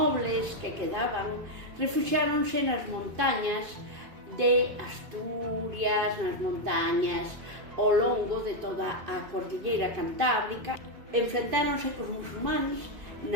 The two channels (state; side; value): late; left; 2.5 ms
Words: que quedaban refuxiáronse nas montañas de Asturias, nas montañas ao longo de toda a cordilleira cantábrica. Enfrentáronse cos musulmanes